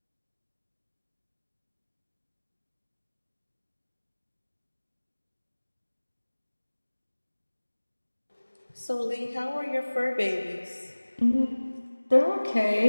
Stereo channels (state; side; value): inverted; both; correlation -1.00